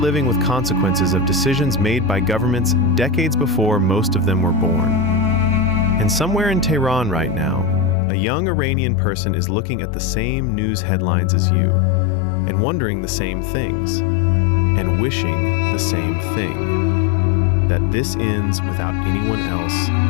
with consequences of decisions made by governments decades before most of them were born. And somewhere in Tehran right now, a young Iranian person is looking at the same news headlines as you, and wondering the same things, and wishing the same thing, that this ends without anyone else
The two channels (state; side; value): drops out; right; at 8.0 s